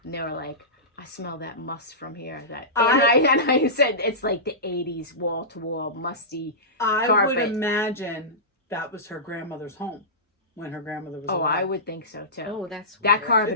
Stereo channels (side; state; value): both; normal; correlation -0.18